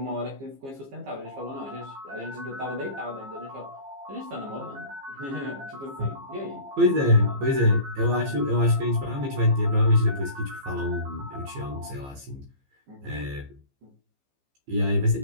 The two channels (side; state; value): left; late; 15 ms